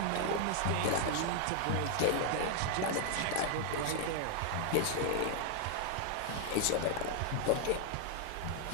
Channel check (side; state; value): both; different; correlation 0.00